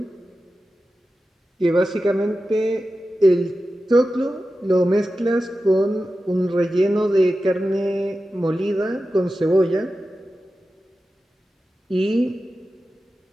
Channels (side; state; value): both; normal; correlation 0.93